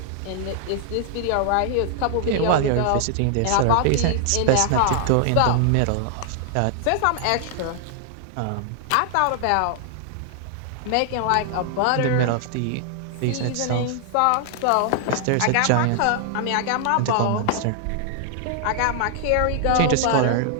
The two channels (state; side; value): different; both; correlation 0.00